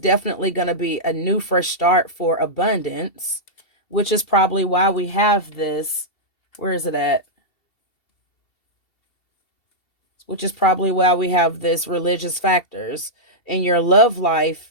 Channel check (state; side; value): late; right; 2.7 ms